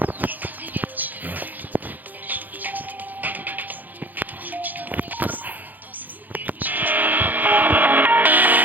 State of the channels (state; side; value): late; left; 0.084 ms